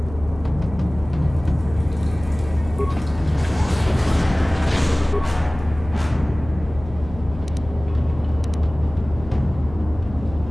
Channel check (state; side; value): noise; left; hum, 14 dB below the sound